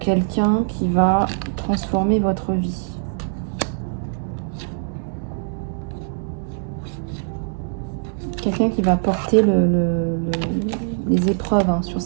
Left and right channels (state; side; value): silent; left; digital silence